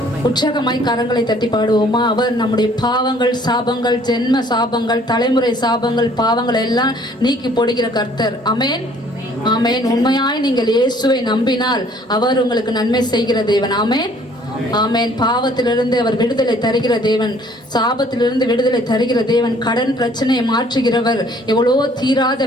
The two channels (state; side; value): normal; both; correlation 0.58